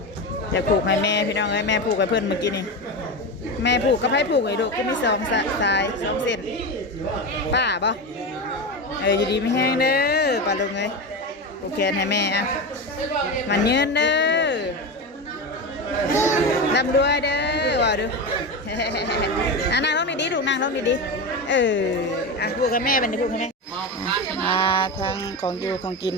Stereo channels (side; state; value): both; normal; correlation 0.20